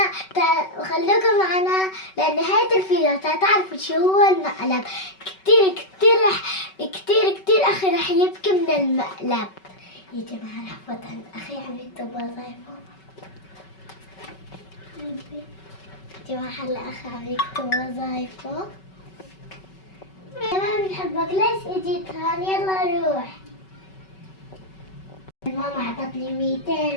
وخلوكم معنا لنهاية الفيديو تعرفوا شو هو المقلب. كتير أخي رح يبكي من المقلب. يا جماعة رح فوت عند أخي عم يكتب وظايفه. جماعة هلا أخي عم يكتب وظايفه. ما بنحبك ليش اجيت هون؟ يلا روح. ماما عطتني 200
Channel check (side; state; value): right; late; 5.3 ms